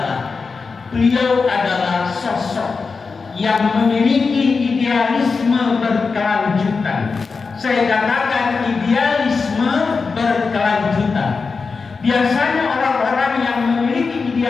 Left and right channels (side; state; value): right; quieter; 4.7 dB